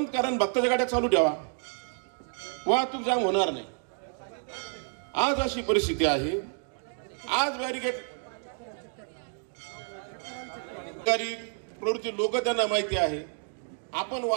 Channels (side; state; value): left; silent; 58 dB below the other